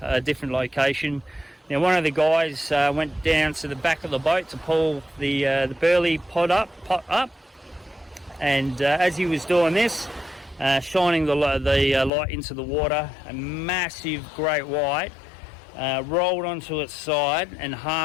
different location. Now one of the guys went down to the back of the boat to pull the burley pot up, and as he was doing this, shining the light into the water, a massive great white rolled onto its side and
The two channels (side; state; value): right; drops out; at 12.1 s